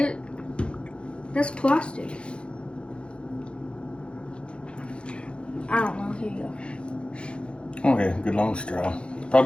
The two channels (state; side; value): late; right; 0.057 ms